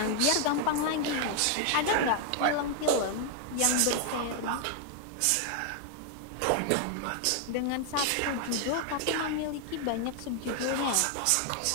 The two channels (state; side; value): different; both; correlation 0.00